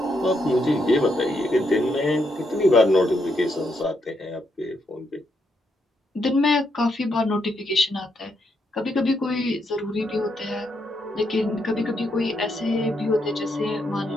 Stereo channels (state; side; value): normal; both; correlation 0.78